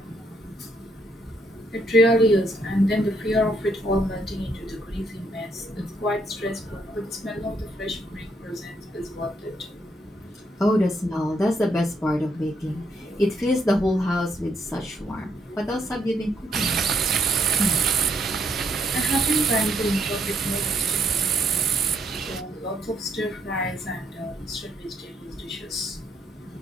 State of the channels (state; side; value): normal; both; correlation 0.72